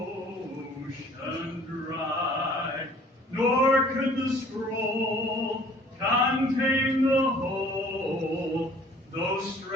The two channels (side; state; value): both; normal; correlation 0.54